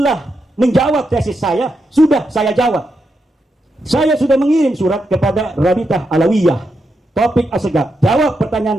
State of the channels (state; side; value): normal; both; correlation 0.84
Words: menjawab tesis saya sudah saya jawab. Saya sudah mengirim surat kepada Rabitah Alawiyah, Taufik Assegaf, jawab